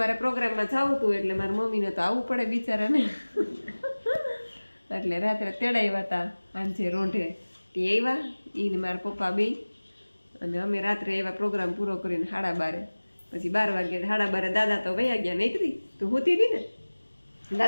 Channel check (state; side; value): inverted; both; correlation -1.00